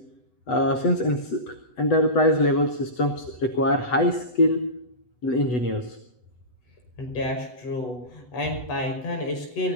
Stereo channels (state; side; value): late; right; 8.0 ms